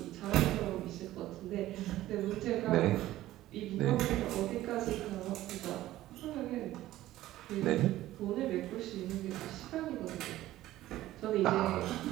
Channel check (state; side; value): quieter; left; 15.1 dB